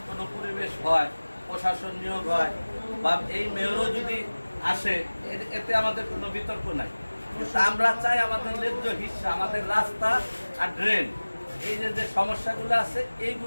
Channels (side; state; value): both; inverted; correlation -1.00